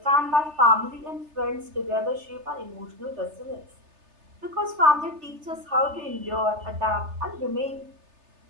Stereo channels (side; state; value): left; late; 3.3 ms